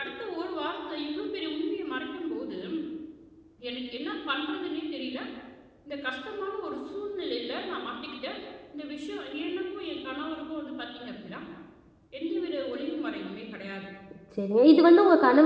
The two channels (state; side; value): identical; both; correlation 1.00